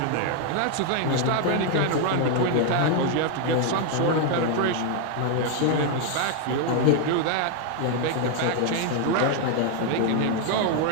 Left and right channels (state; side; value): different; both; correlation 0.00